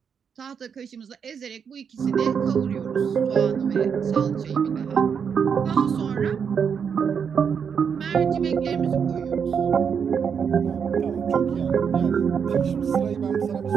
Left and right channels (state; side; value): quieter; left; 6.9 dB